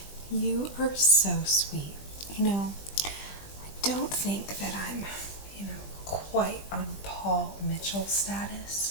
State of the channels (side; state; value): right; late; 20 ms